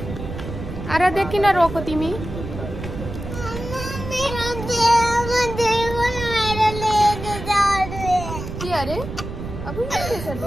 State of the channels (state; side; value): noise; right; rumble, 8 dB below the sound